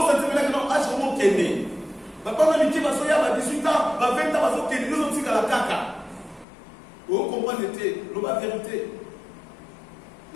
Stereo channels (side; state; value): right; drops out; at 6.5 s